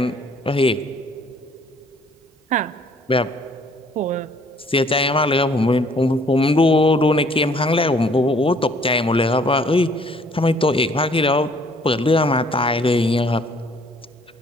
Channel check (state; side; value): normal; both; correlation 0.60